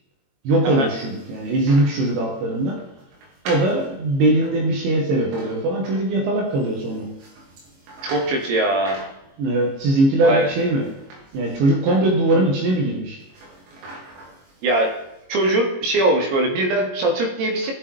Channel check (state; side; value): late; left; 22 ms